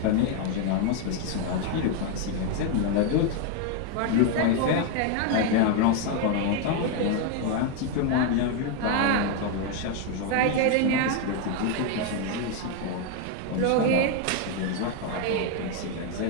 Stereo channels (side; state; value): both; different; correlation 0.01